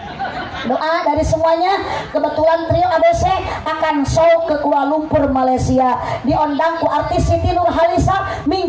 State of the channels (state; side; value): identical; both; correlation 1.00